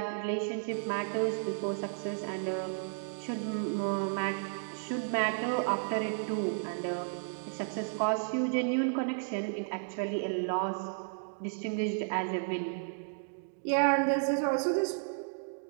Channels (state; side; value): silent; left; digital silence